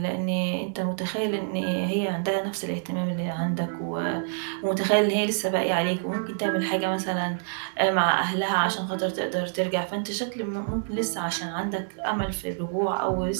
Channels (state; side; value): silent; left; 60 dB below the other